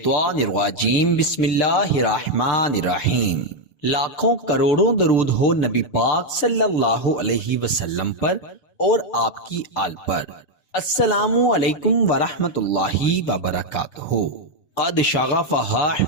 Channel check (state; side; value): late; right; 6.8 ms